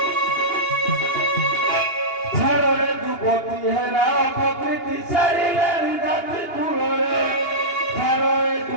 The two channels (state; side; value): late; right; 2.8 ms